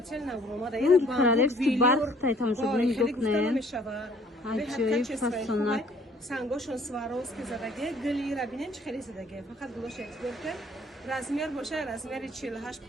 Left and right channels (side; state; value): both; normal; correlation 0.58